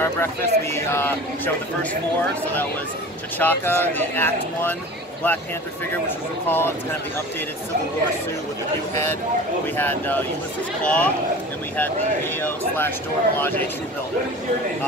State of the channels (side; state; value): both; normal; correlation 0.38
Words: breakfast. We showed the first four. So that was T'Chaka, the Act 1 Black Panther figure, which was recalled. It's kind of the updated Civil War suit with the new head. We had Ulysses Claw, and we had the AO/Dora Milaje True Builder.